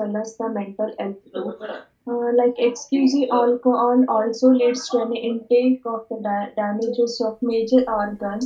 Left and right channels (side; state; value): both; identical; correlation 1.00